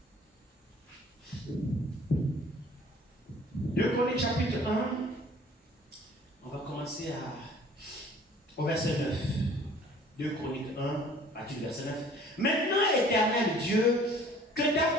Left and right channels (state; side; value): normal; both; correlation 0.52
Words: Deux Chroniques, chapitre 1. On va commencer au verset 9. 2 Chroniques 1, partir du verset 9. Maintenant, éternel Dieu, que ta